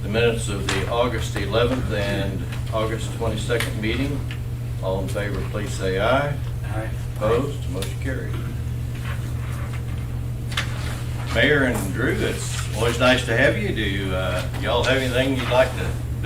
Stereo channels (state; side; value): identical; both; correlation 1.00